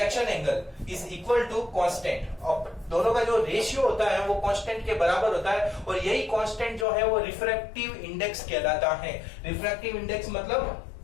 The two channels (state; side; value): drops out; right; at 6.9 s